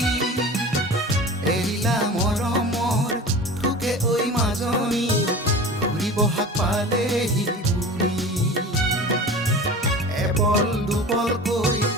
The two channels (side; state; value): both; normal; correlation 0.36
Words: এৰিলা মৰমৰ থোকে ঐ মাজনী, ঘূৰি বহাগ পালেহি বুঢ়ী। এপল দুপলকৈ